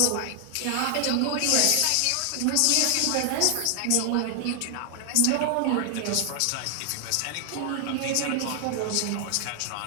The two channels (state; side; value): different; both; correlation 0.00